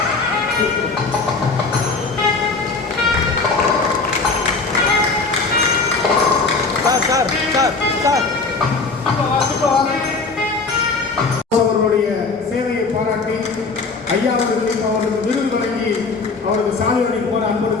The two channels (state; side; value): quieter; right; 4.1 dB